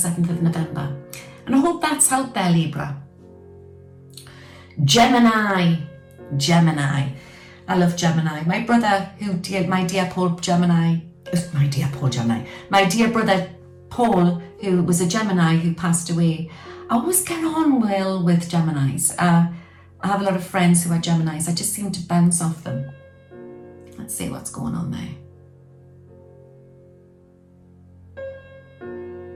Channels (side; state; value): both; identical; correlation 1.00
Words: of November. And I hope that's helped there, Libra. Gemini. I love Gemini. My brother, my dear brother Paul, who was a Gemini who passed away. I always get on well with Geminis. I have a lot of friends who are Geminis. I just seem to bounce off them. Let's see what's going on there.